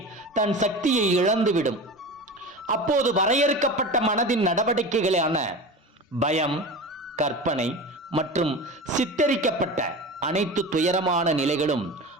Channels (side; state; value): both; normal; correlation 0.30